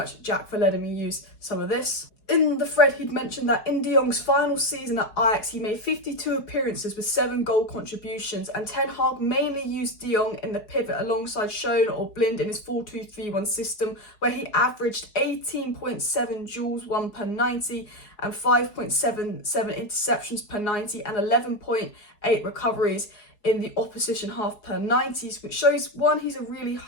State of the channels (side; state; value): right; late; 4.7 ms